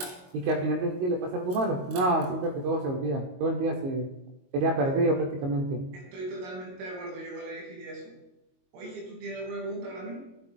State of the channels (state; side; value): late; left; 22 ms